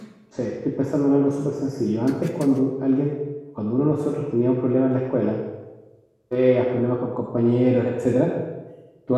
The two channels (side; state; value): both; identical; correlation 1.00